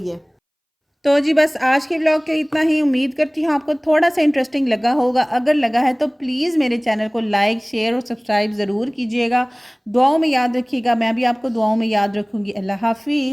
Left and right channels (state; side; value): identical; both; correlation 1.00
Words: है। तो जी बस आज के व्लॉग के इतना ही। उम्मीद करती हूँ आपको थोड़ा सा इंटरेस्टिंग लगा होगा। अगर लगा है तो प्लीज़ मेरे चैनल को लाइक, शेयर और सब्सक्राइब ज़रूर कीजिएगा। दुआओं में याद रखिएगा, मैं भी आपको दुआओं में याद रखूँगी। अल्लाह